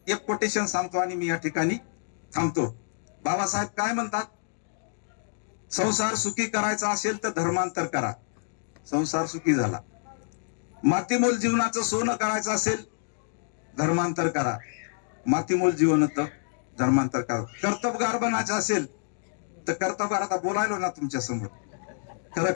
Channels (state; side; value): silent; right; digital silence